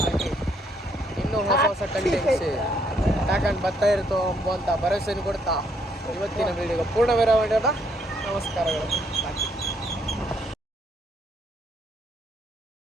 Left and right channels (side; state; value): both; normal; correlation 0.70